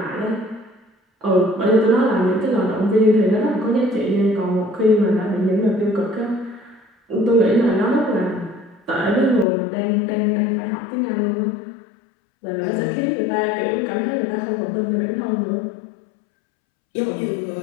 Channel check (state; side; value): drops out; right; at 9.5 s